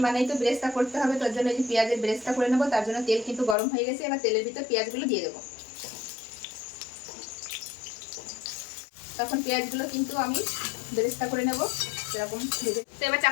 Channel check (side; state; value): right; drops out; at 3.6 s